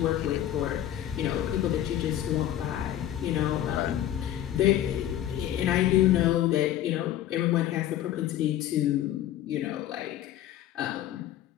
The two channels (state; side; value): quieter; right; 12.0 dB